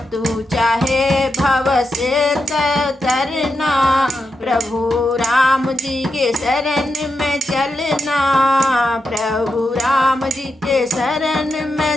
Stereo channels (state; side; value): normal; both; correlation 0.87